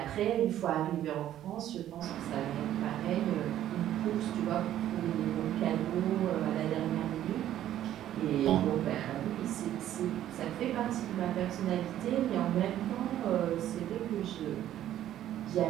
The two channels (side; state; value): left; quieter; 12.0 dB